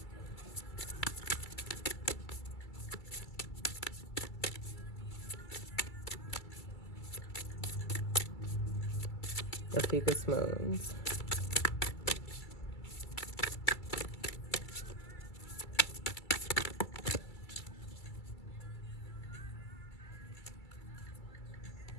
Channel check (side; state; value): right; late; 2.3 ms